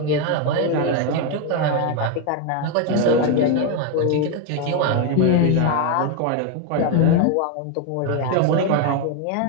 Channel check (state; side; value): different; both; correlation 0.01